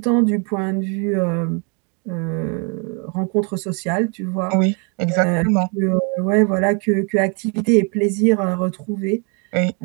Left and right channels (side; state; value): left; quieter; 35.4 dB